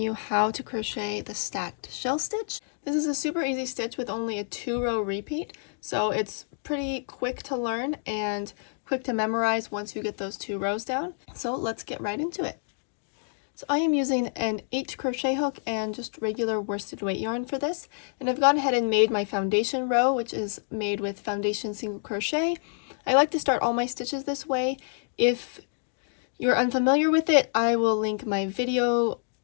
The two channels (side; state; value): right; silent; digital silence